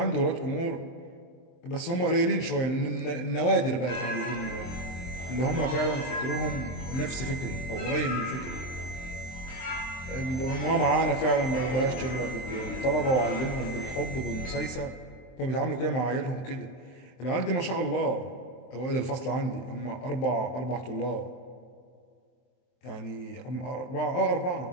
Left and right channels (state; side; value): late; right; 23 ms